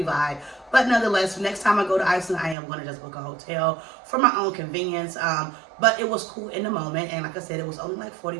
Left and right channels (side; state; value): left; drops out; at 2.6 s